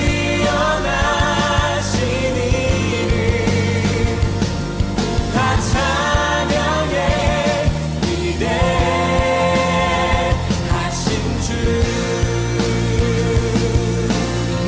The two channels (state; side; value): identical; both; correlation 1.00